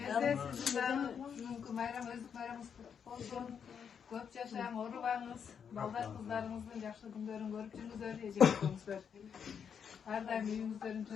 сіздің де бүгінгі майрам, өздік майрамыңыз құтты болсын. Көп жашаң, орубаңыз, балдар қыздарыңыздың жақсы күндерін көріп жүріңіздер, ежелдеріңіздер. Ардайым үйіңіздерін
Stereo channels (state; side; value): quieter; right; 7.3 dB